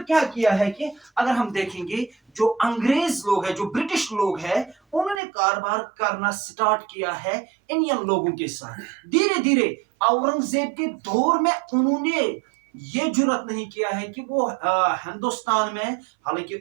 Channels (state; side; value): drops out; left; at 5.2 s